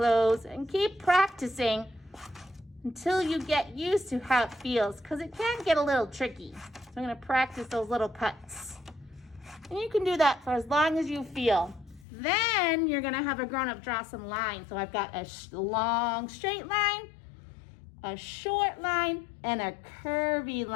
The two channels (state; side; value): drops out; right; at 12.1 s